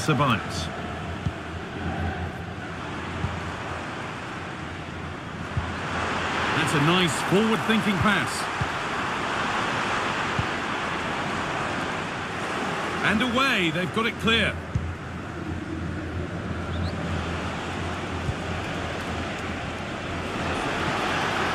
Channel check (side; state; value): both; identical; correlation 1.00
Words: That's a nice forward-thinking pass. And away, they've got it clear.